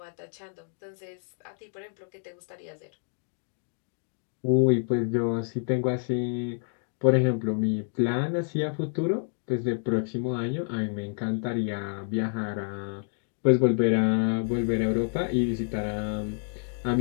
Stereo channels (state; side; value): silent; right; digital silence